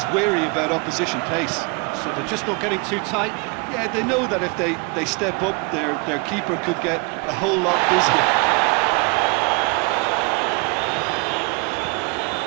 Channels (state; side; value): quieter; left; 31.2 dB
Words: wary about opposition pace. So they're just not getting too tight. Yeah, they know that if they step up, their keeper could get a whole lot busier.